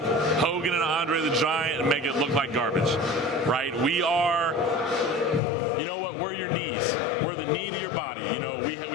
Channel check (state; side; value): drops out; right; at 5.4 s